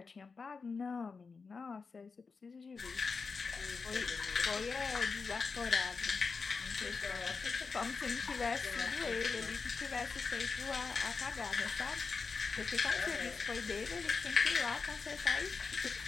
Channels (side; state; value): right; quieter; 4.8 dB